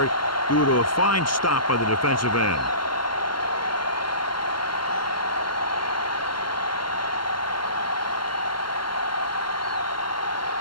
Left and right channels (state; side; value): late; right; 0.72 ms